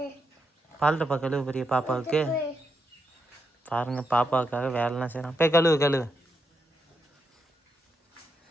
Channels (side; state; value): both; normal; correlation 0.82